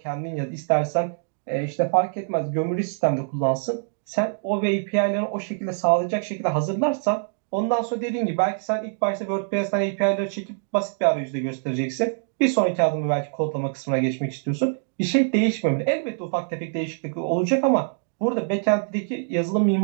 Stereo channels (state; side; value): silent; left; digital silence